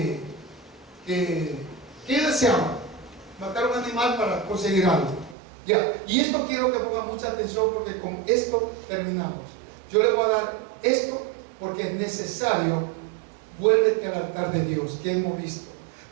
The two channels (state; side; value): drops out; left; at 5.4 s